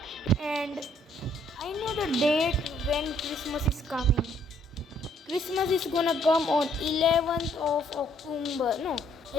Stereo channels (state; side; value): normal; both; correlation 0.66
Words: and I know the date when Christmas is coming. Christmas is gonna come on 11th of October. No,